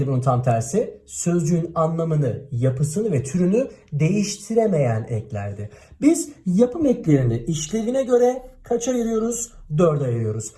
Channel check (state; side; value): identical; both; correlation 1.00